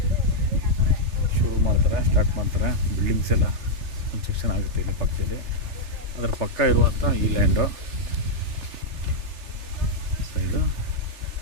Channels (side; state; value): left; late; 3.4 ms